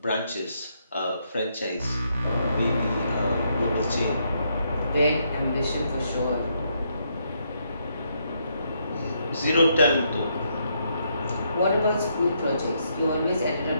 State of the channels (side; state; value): both; inverted; correlation -0.76